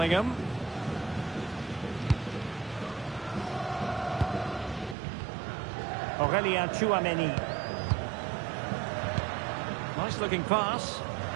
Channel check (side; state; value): left; drops out; at 5.0 s